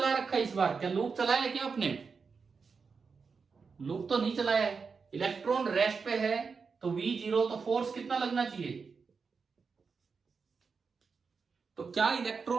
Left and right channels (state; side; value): quieter; left; 5.2 dB